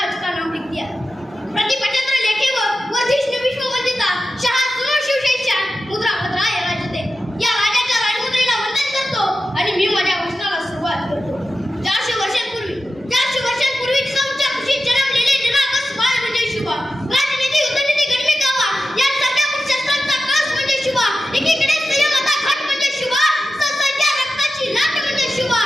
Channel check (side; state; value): both; normal; correlation 0.92